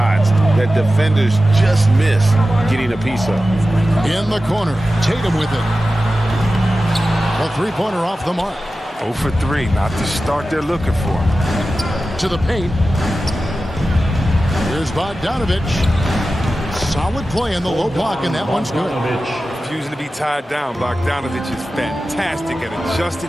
that defenders just miss getting a piece of. In the corner, Tatum with it. A three-pointer off the mark. 0 for 3, not the start they're looking for. To the paint. Here's Bogdanovich. Solid play in the low block, and that one's good. Refusing to be tied down, Bogdanovich is fantastic at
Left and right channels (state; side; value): normal; both; correlation 0.94